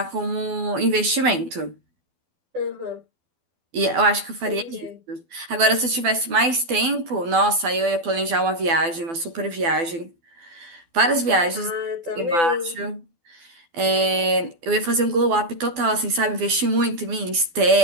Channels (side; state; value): left; late; 12 ms